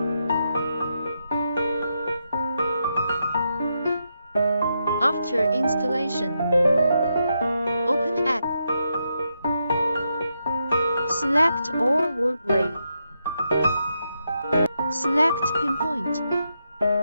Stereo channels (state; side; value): inverted; both; correlation -0.83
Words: After installation, open app. Select all word array. Select pinpoint.